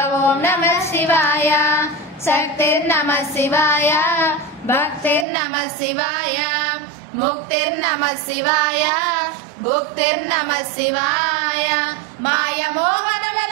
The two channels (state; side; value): drops out; left; at 5.2 s